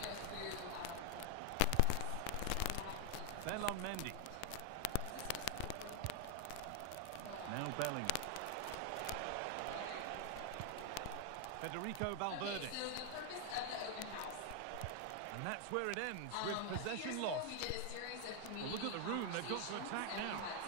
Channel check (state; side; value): different; both; correlation 0.00